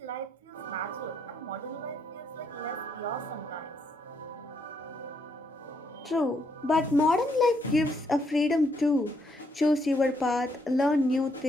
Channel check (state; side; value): normal; both; correlation 0.74